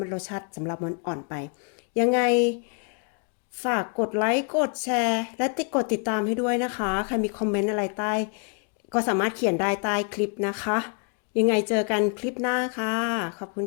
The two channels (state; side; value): quieter; right; 39.2 dB